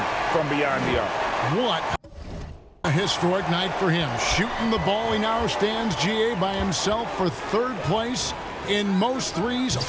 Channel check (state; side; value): identical; both; correlation 1.00